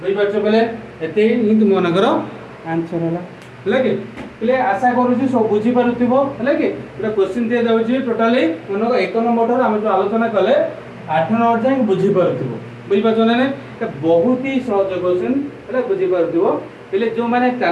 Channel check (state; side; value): identical; both; correlation 1.00